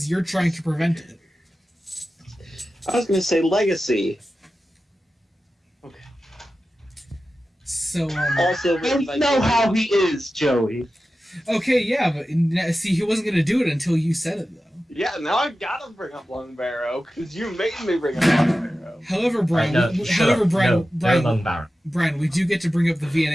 you're trying to prevent it. I was gonna say Legacy. Okay. So, Also, I don't know how he is, Joey. okay, yeah, but see, he wasn't gonna do it until you said it, though. Yeah, now I've got to bring up Lung Barrow because you made me bring up Lung Barrow. However, Brian, Brian, we do get to bring up the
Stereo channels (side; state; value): both; normal; correlation 0.93